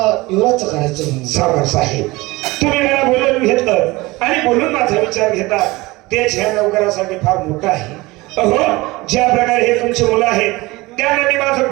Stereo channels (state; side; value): quieter; left; 21.4 dB